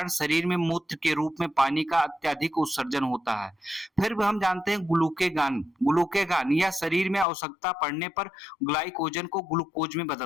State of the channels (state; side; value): drops out; right; at 7.2 s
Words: शरीर में मूत्र के रूप में पानी का अत्यधिक उत्सर्जन होता है। फिर हम जानते हैं ग्लूकेगॉन यह शरीर में आवश्यकता पड़ने पर ग्लाइकोजन को ग्लूकोज में